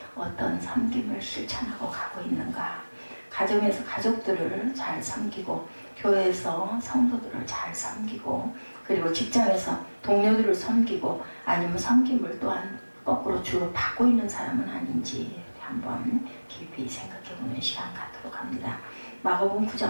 어떤 섬김을 실천하고 가고 있는가. 가정에서 가족들을 잘 섬기고 교회에서 성도들을 잘 섬기고 그리고 직장에서 동료들을 섬기고 아니면 섬김을 또한 거꾸로 주로 받고 있는 사람은 아닌지 한번 깊이 생각해보는 시간 갖도록 합니다. 마가복음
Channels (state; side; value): inverted; both; correlation -1.00